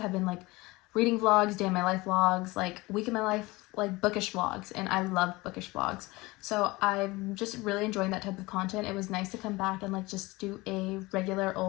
have been like reading vlogs, day in my life vlogs, like week in my life, like bookish vlogs, and I love bookish vlogs. So I'm just really enjoying that type of content. It was nice to come back and like just do a regular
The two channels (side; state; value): right; quieter; 21.9 dB